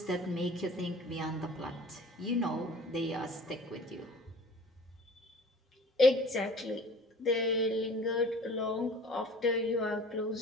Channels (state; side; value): normal; both; correlation 0.46